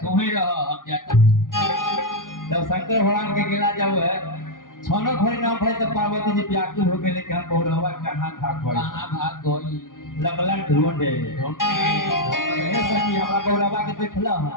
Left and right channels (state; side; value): late; right; 0.89 ms